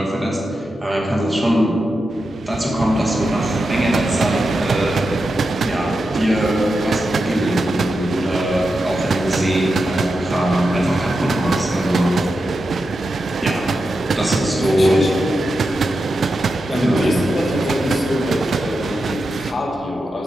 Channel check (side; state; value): both; normal; correlation 0.89